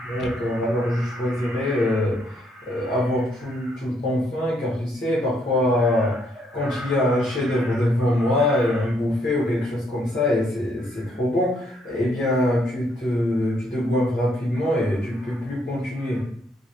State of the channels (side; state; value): both; normal; correlation 0.71